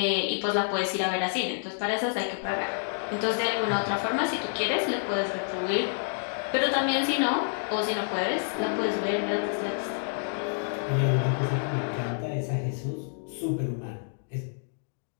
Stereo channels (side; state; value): right; silent; digital silence